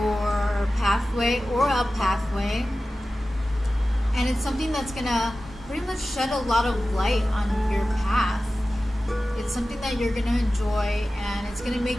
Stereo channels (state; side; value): normal; both; correlation 0.95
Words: pathway or a pathway, and it's something that's gonna pretty much shed a lot of light on your path. It's something that you're gonna enjoy and it's gonna